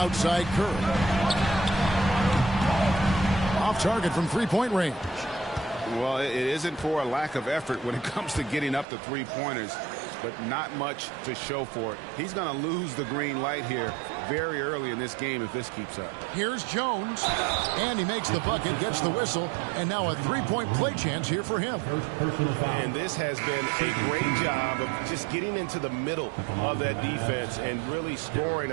Curry. Off target from 3-point range. Well, it isn't for a lack of effort when it comes to getting up to 3-pointers, but not much to show for it. He's going to lose the green light here very early in this game if this keeps up. Here's Jones, and he makes the bucket, gets the whistle, and now a 3-point play chance here for him. And this has been a great job of just getting into the middle of that defense and really scoring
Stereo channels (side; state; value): left; drops out; at 8.8 s